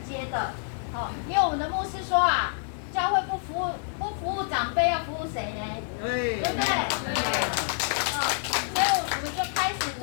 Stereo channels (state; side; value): silent; right; digital silence